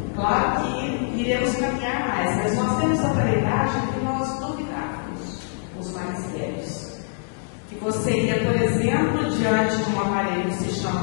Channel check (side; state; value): right; silent; digital silence